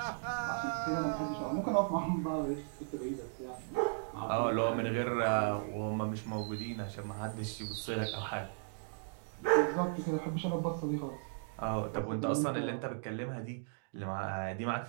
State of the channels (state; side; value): silent; left; digital silence